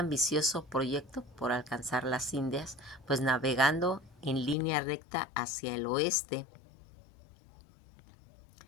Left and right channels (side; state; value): right; drops out; at 4.5 s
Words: proyecto por alcanzar las Indias, pues navegando en línea recta hacia el oeste.